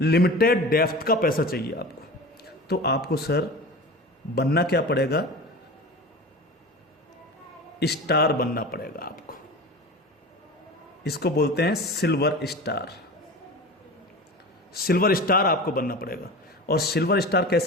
डेप्थ का पैसा चाहिए आपको, तो आपको सर बनना क्या पड़ेगा? स्टार बनना पड़ेगा आपको। इसको बोलते हैं सिल्वर स्टार। सिल्वर स्टार आपको बनना पड़ेगा। और सिल्वर स्टार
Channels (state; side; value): normal; both; correlation 0.32